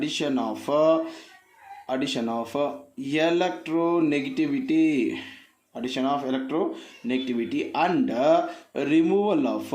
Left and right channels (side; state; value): both; identical; correlation 1.00